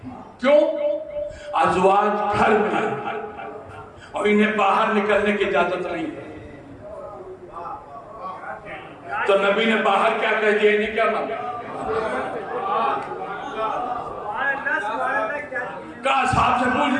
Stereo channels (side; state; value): both; identical; correlation 1.00